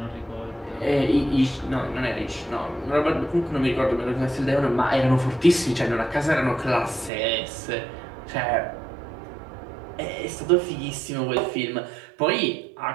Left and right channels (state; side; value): drops out; left; at 7.1 s